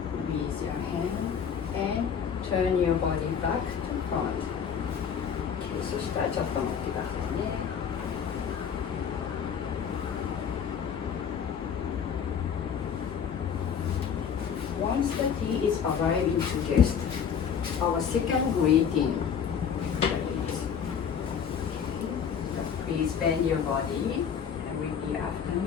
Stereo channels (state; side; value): quieter; right; 7.4 dB